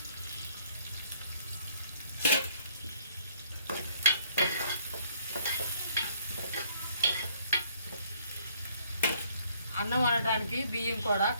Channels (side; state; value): both; inverted; correlation -0.63